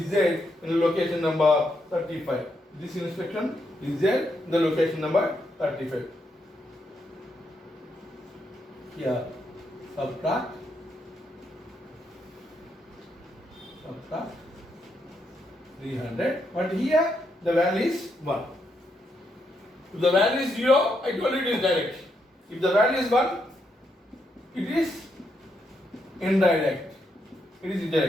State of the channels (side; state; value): both; normal; correlation 0.79